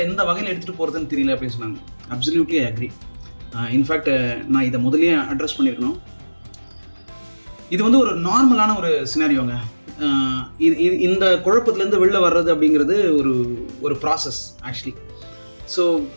எந்த வகையில் எடுத்துகிட்டு போகிறதுன்னு தெரியல அப்படின்னு சொன்னாங்க. Absolutely agri. இன்ஃபேக்ட் நான் இதை முதல்லயே அட்ரஸ் பண்ணியிருக்கணும். இது வந்து ஒரு நார்மலான ஒரு சினாரியோங்க. இந்த குழப்பத்திலேருந்து வெளில வர்றது அப்படிங்கிறது ஒரு ப்ராசஸ் ஆக்சுவலி. ஸோ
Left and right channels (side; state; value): both; inverted; correlation -1.00